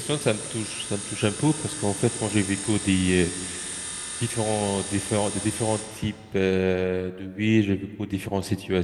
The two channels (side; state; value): both; identical; correlation 1.00